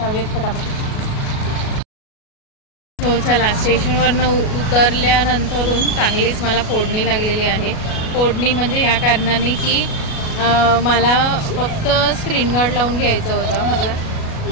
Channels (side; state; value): right; late; 37 ms